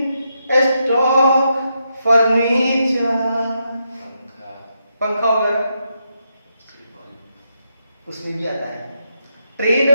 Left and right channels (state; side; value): inverted; both; correlation -0.82